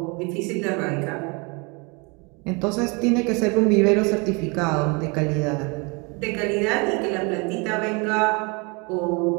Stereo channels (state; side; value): quieter; left; 30.3 dB